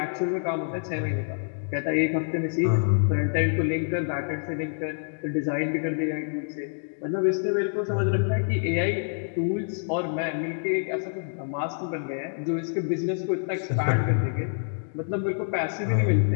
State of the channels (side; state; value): right; silent; digital silence